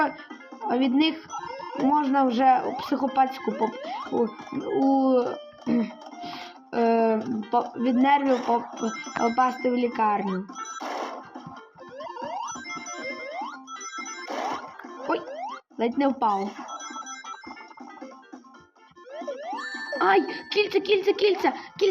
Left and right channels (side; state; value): both; identical; correlation 1.00